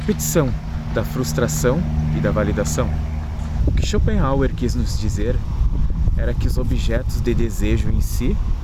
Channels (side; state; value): both; identical; correlation 1.00